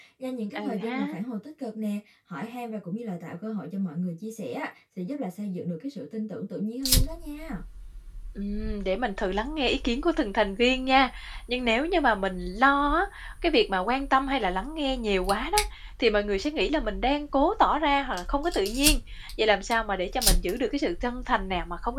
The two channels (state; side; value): identical; both; correlation 1.00